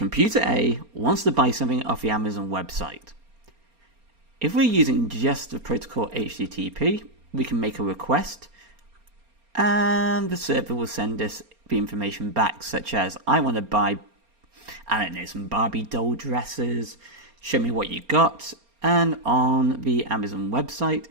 A wants to buy something off the Amazon website. If we're using just the protocol HTTP, we can make a request and the server will send us the information back, such as, I want to buy, I don't know, some Barbie doll dresses, show me what you got, and on the Amazon website,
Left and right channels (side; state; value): left; late; 4.3 ms